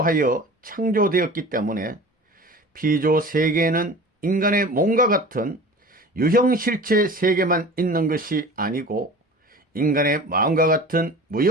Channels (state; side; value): normal; both; correlation 0.39